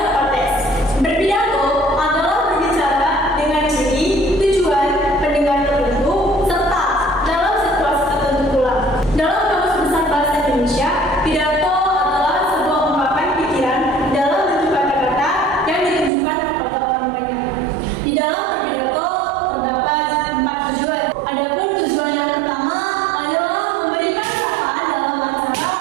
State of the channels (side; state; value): left; drops out; at 16.1 s